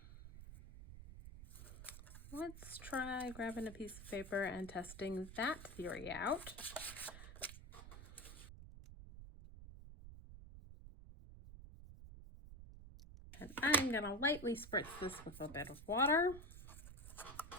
Let's try grabbing a piece of paper and testing that theory out. And I'm going to lightly spritz this with a bit of water.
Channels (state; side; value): noise; right; rumble, 13 dB below the sound